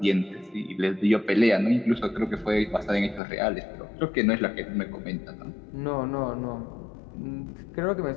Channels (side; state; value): right; drops out; at 3.2 s